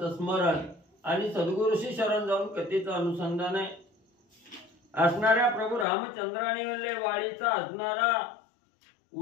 स्मरण आणि सद्गुरूशी शरण जाऊन कथेचं अनुसंधान आहे। असणाऱ्या प्रभू रामचंद्राने म्हणले वाळीचा असणारा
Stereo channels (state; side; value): drops out; right; at 5.9 s